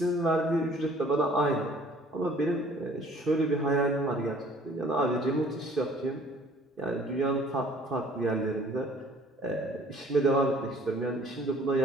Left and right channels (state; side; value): normal; both; correlation 0.55